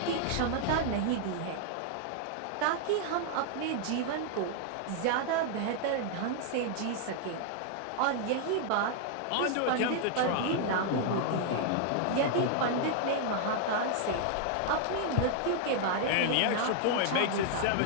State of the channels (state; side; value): different; both; correlation 0.00